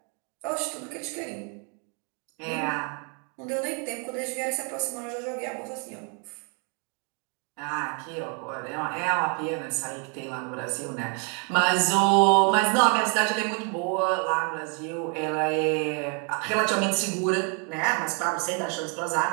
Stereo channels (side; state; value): left; quieter; 37.5 dB